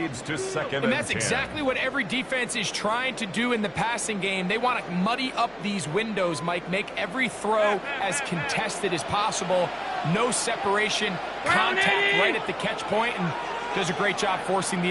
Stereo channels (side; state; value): left; noise; hum, 28 dB below the sound